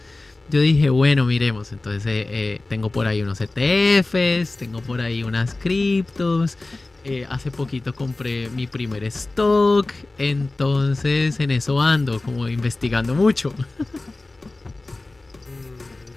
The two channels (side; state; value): right; quieter; 3.1 dB